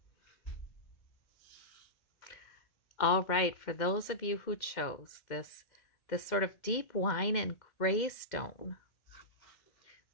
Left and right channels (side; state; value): right; late; 2.1 ms